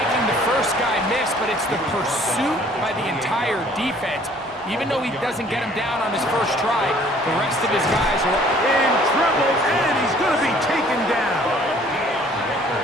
the first guy miss, but it's the pursuit by the entire defense. Even though he doesn't get him down on his first try, the rest of his guys are in trouble, and he's going to be taken down.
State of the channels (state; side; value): normal; both; correlation 0.57